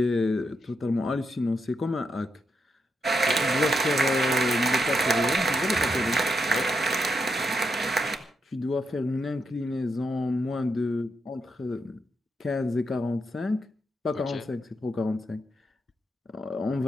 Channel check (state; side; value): normal; both; correlation 0.82